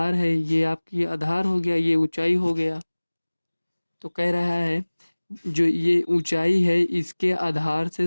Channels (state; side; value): inverted; both; correlation -1.00